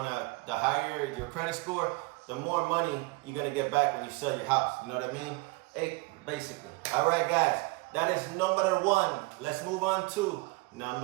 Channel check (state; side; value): quieter; left; 25.0 dB